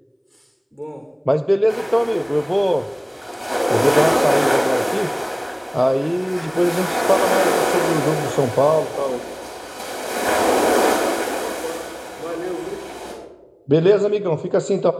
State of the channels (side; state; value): both; identical; correlation 1.00